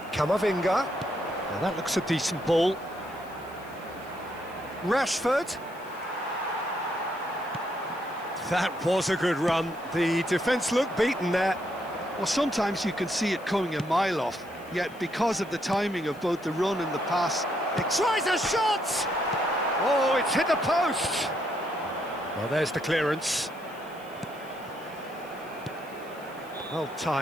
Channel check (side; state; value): left; noise; hiss, 25 dB below the sound